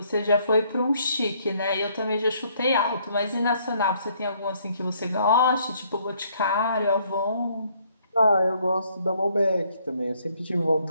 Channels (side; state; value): both; inverted; correlation -0.67